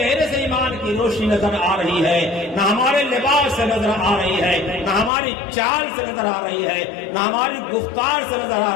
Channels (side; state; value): right; drops out; at 5.1 s